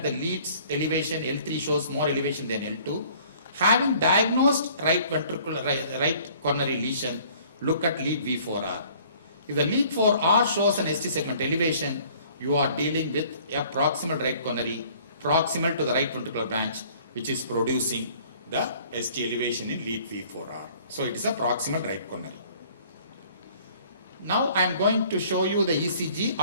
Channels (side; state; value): both; inverted; correlation -0.55